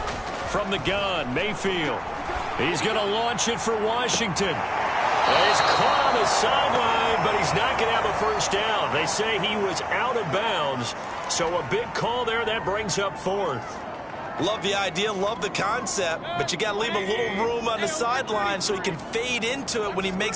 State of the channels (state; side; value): identical; both; correlation 1.00